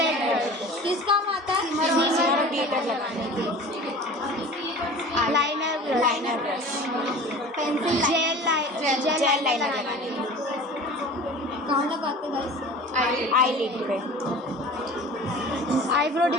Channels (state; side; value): normal; both; correlation 0.40